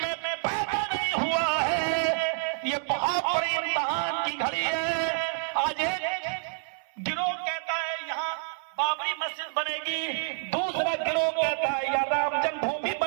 میں پیدا نہیں ہوا ہے، یہ بہت بڑی امتحان کی گھڑی ہے۔ آج ایک گروہ کہتا ہے یہاں بابری مسجد بنے گی، دوسرا گروہ کہتا ہے یا رام جنم بھومی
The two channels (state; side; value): silent; left; 59 dB below the other